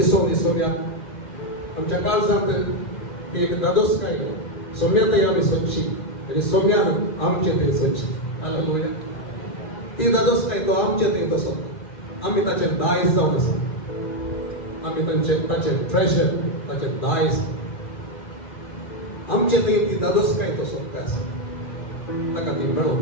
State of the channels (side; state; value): right; late; 2.0 ms